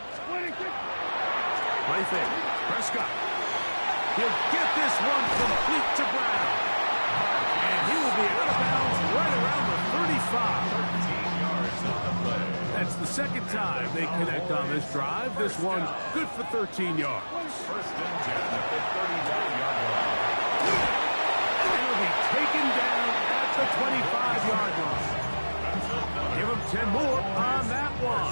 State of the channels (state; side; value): inverted; both; correlation -1.00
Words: splitting. Play fake. Prescott. He'll get this one complete to Brown. And he will be out of bounds right around the 35. 13 yards on the play. That's the second time they connect on this drive. This one good for 13 yards. First and 10 at the 39-yard line. And he'll be taken down at the 25-yard line. Give him 10 more on that